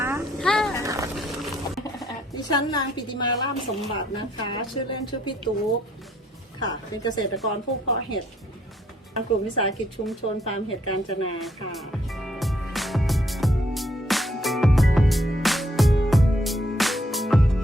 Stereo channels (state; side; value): normal; both; correlation 0.70